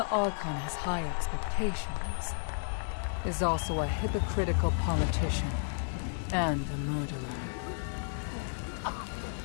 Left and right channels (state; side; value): silent; right; digital silence